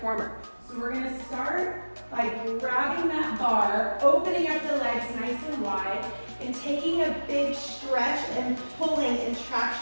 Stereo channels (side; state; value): both; inverted; correlation -1.00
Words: So we're gonna start by grabbing that bar, opening up the legs nice and wide, and taking a big stretch and pulling and